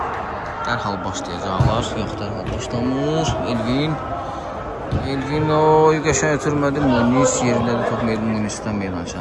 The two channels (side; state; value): both; identical; correlation 1.00